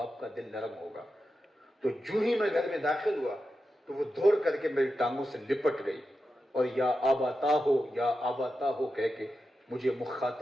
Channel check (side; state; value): both; normal; correlation 0.90